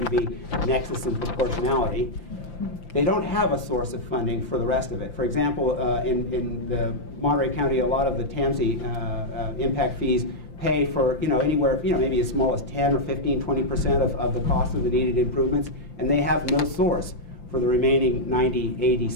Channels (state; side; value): late; right; 5.8 ms